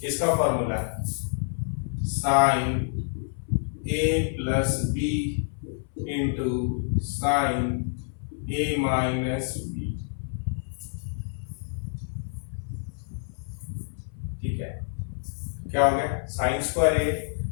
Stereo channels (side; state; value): right; silent; 59 dB below the other